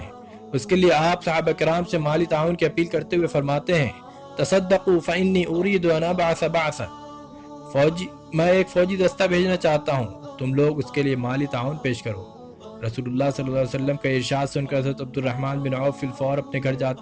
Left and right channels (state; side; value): identical; both; correlation 1.00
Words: اس کے لیے آپ صحابہ کرام سے مالی تعاون کی اپیل کرتے ہوئے فرماتے ہیں، تصدقوا فإنی اريد ان ابعث بعثا، میں ایک فوجی دستہ بھیجنا چاہتا ہوں، تم لوگ اس کے لیے مالی تعاون پیش کرو۔ رسول اللہ صلی اللہ علیہ وسلم کا ارشاد سن کر حضرت عبد الرحمن بن عوف فی الفور اپنے گھر